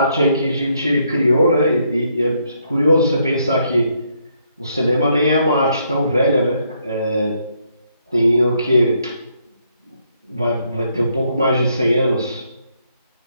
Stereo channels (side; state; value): both; inverted; correlation -0.73